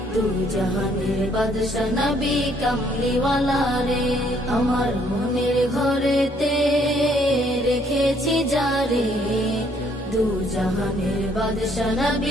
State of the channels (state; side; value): normal; both; correlation 0.66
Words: দু জাহানের বাদশা নবী কমলিওয়ালা রে। আমার মনের ঘরেতে রেখেছি যারে, দু জাহানের বাদশা